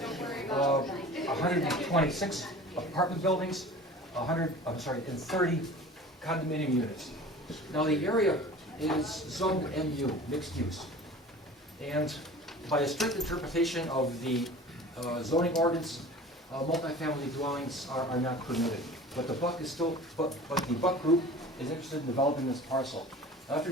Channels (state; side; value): normal; both; correlation 0.41